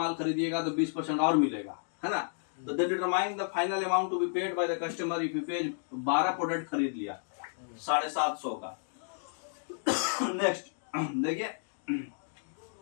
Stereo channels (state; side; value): silent; right; digital silence